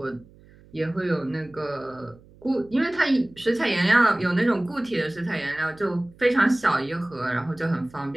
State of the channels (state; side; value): noise; right; hum, 25 dB below the sound